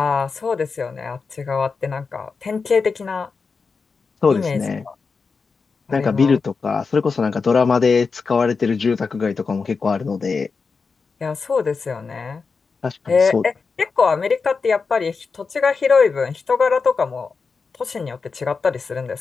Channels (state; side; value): quieter; right; 4.8 dB